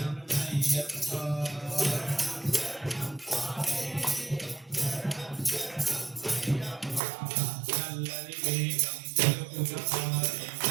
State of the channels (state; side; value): drops out; left; at 7.0 s